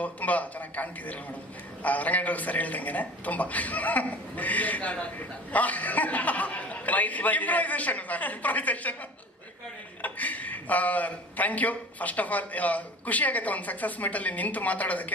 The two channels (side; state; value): both; normal; correlation 0.41